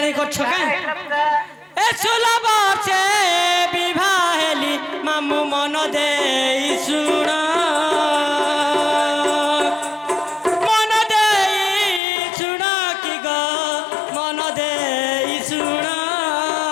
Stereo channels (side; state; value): right; drops out; at 12.0 s